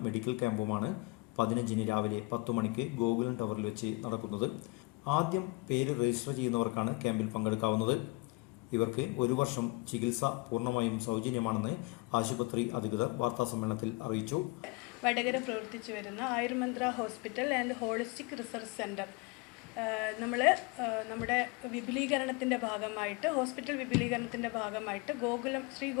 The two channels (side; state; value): right; quieter; 25.4 dB